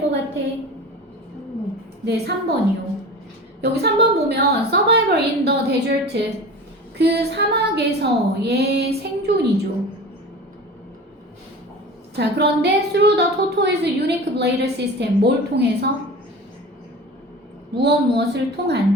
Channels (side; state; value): both; normal; correlation 0.35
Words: 것 같아? 네, 3번이요. 여기 3번 보면 Survival in the desert. 그 사막에서의 생존이죠. 자, 그런데 through the tortoise unique blade system. 뭘 통해서? 무엇을